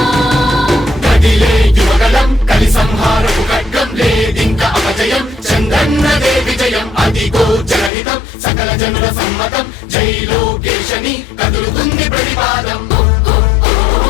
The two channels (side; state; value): right; drops out; at 7.9 s